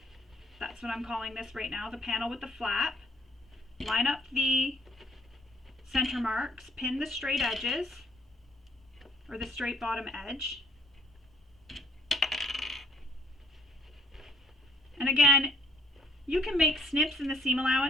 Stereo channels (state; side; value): normal; both; correlation 0.61